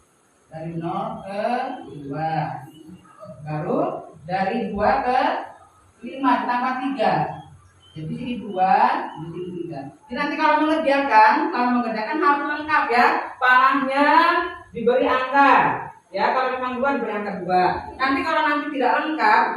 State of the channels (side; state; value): both; identical; correlation 1.00